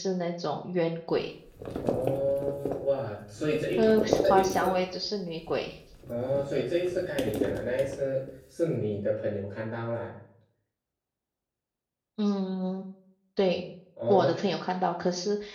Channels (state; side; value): identical; both; correlation 1.00